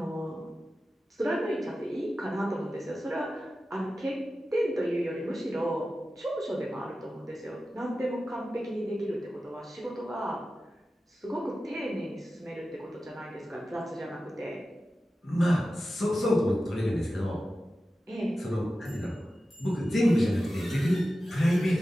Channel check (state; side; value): normal; both; correlation 0.94